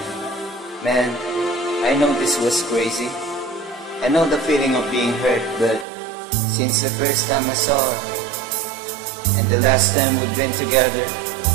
Man, I know this was crazy. I know the feeling of being hurt, but since the first time I saw her and the last time we've been together,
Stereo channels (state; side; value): drops out; left; at 5.9 s